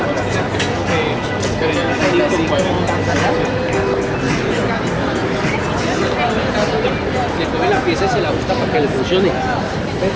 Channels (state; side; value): identical; both; correlation 1.00